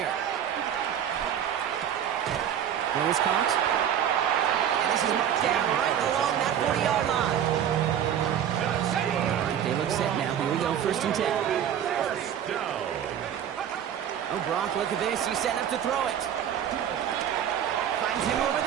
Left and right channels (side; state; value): left; quieter; 9.5 dB